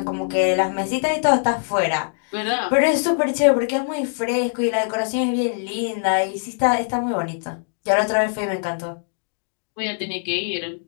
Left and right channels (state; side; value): silent; right; digital silence